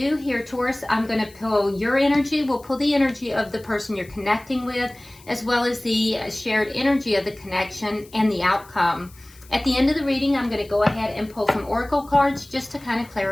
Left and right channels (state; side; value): noise; left; hiss, 24 dB below the sound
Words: here, Taurus, I'm going to pull your energy. We'll pull the energy of the person you're connecting with, as well as the shared energy of the connection and the outcome. At the end of the reading, I'm going to go ahead and pull some oracle cards just to kind of